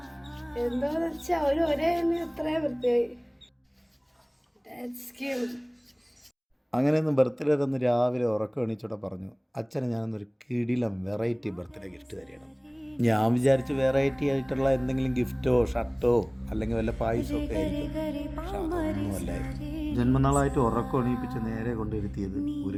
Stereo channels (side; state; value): both; identical; correlation 1.00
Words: എന്താന്ന് വെച്ചാ ഒരേ ഇത്രയും വൃത്തിയായി. അങ്ങനെയൊന്നും ബർത്ത്ഡേ തന്ന് രാവിലെ ഉറക്കം എണീച്ചോടെ പറഞ്ഞു, അച്ഛനെ ഞാനൊന്നൊരു കിടിലം വെറൈറ്റി ബർത്ത്ഡേ ഗിഫ്റ്റ് തരണം. ഞാൻ വിചാരിച്ച് വെറൈറ്റി ആയിട്ടുള്ള എന്തെങ്കിലും ഗിഫ്റ്റോ ഷർട്ടോ അല്ലെങ്കിൽ വല്ല പായസമോ ഒക്കെ ആയിരിക്കും. പക്ഷെ അതൊന്നുമല്ലായിരുന്നു. ജന്മനാളായിട്ട് ഉറക്കം എണീപ്പിച്ച് നേരെ കൊണ്ടിരുത്തിയത്